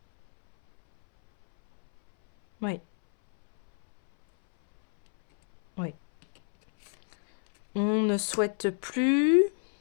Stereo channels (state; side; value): silent; right; 60 dB below the other